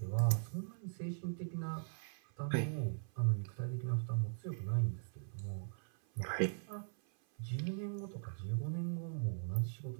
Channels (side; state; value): left; silent; 51 dB below the other